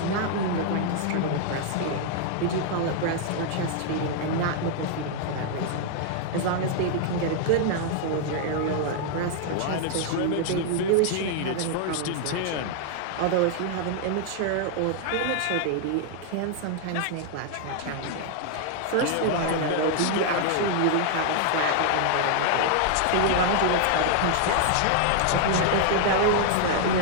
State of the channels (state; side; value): different; both; correlation 0.00